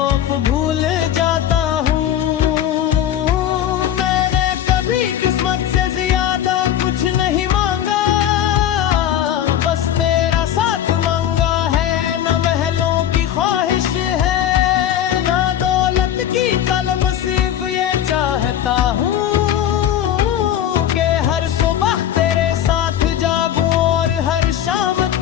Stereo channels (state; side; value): quieter; right; 10.7 dB